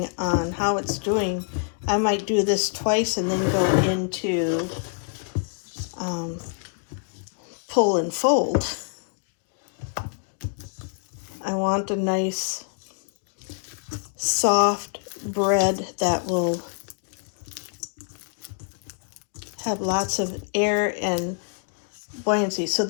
on how it's doing, I might do this twice and then go into pull and fold. I want a nice soft bread that will have lots of air and buoyancy. So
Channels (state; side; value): silent; right; 61 dB below the other